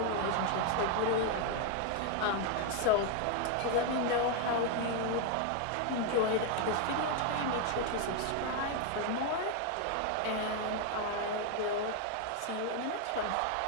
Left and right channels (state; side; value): different; both; correlation 0.01